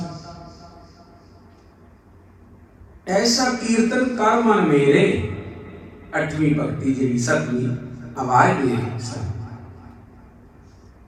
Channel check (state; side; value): identical; both; correlation 1.00